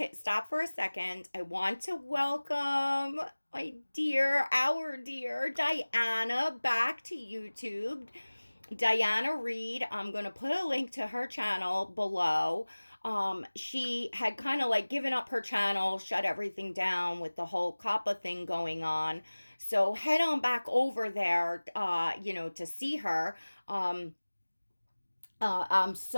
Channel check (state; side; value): inverted; both; correlation -1.00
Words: stop for a second. I want to welcome our dear Diana back to YouTube. Diana Reed. I'm going to put a link to her channel below. She had kind of like given up her channel, shut everything down with the whole COPPA thing going on. So head on back over there, to see her. I'm